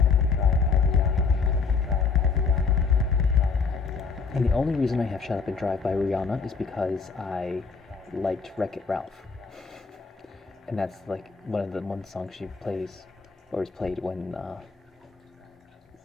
And the only reason I have Shut Up and Drive by Rihanna is because I liked Wreck-It Ralph. And that's like one song she plays, or is played when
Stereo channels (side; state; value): right; quieter; 5.0 dB